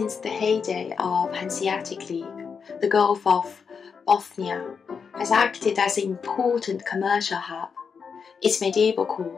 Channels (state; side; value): quieter; right; 6.0 dB